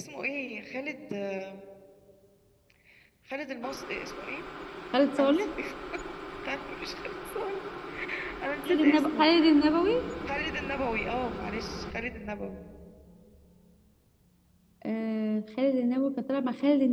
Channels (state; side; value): identical; both; correlation 1.00